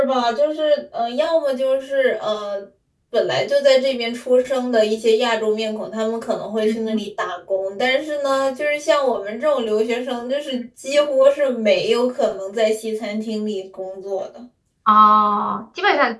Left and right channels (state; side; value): identical; both; correlation 1.00